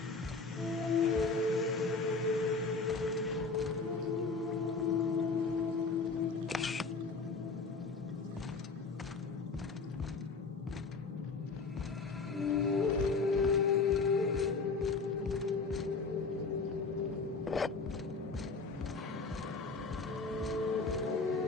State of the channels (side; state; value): right; quieter; 4.3 dB